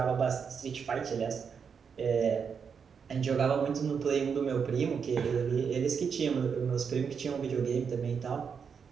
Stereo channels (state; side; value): quieter; left; 6.4 dB